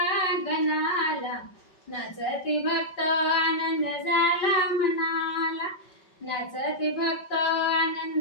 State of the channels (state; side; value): late; right; 5.3 ms